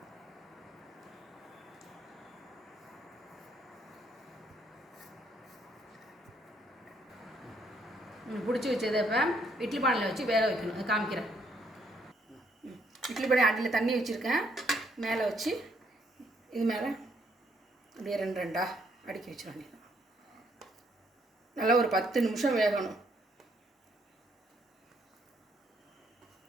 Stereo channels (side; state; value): both; normal; correlation 0.70